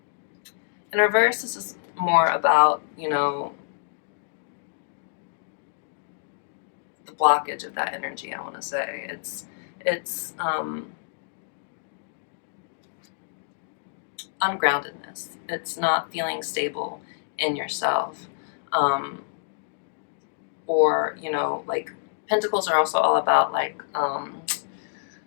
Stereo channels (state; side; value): silent; right; digital silence